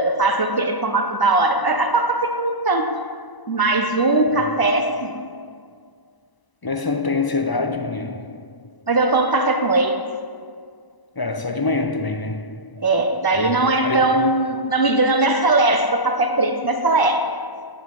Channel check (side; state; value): right; late; 1.0 ms